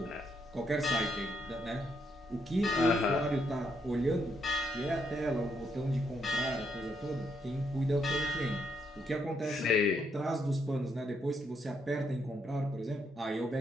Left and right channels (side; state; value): both; normal; correlation 0.76